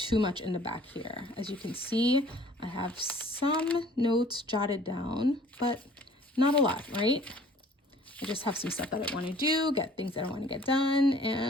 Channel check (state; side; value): normal; both; correlation 0.53